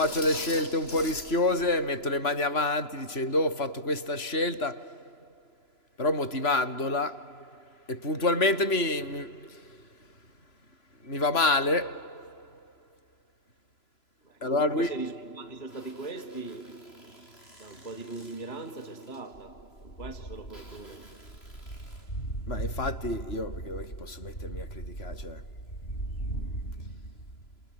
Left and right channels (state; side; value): late; right; 3.0 ms